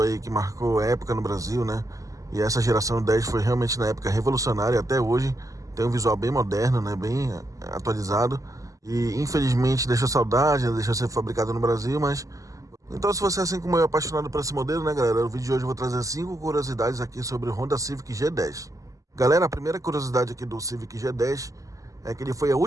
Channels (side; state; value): left; late; 0.16 ms